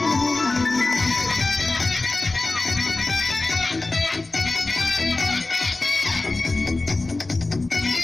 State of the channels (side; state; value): right; quieter; 3.2 dB